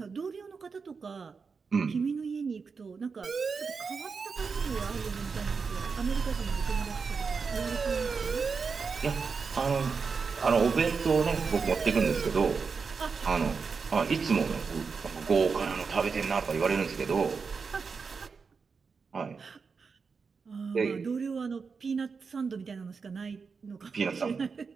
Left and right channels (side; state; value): left; quieter; 5.2 dB